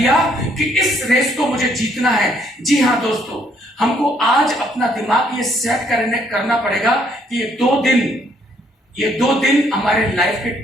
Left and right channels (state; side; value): normal; both; correlation 0.67